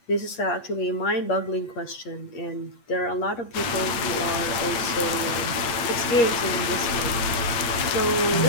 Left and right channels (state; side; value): late; right; 8.8 ms